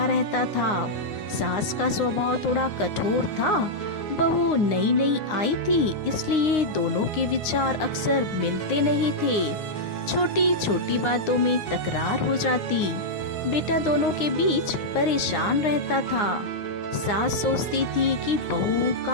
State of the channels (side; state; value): right; late; 9.6 ms